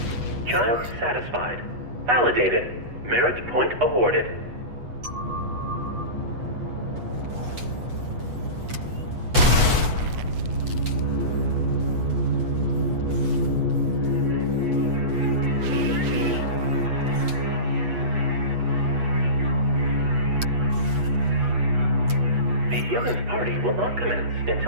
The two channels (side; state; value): left; late; 8.2 ms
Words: Child satisfied. Validated. Merit point awarded. Yogan's party will not commence